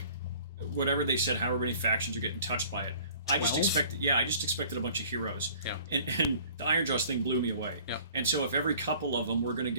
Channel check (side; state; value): both; inverted; correlation -0.51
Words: whatever they said, however many factions are getting touched by it. 12? I just expected a bunch of heroes. Yeah. And the Ironjawz thing blew me away. Yeah. And so if every couple of them we're going to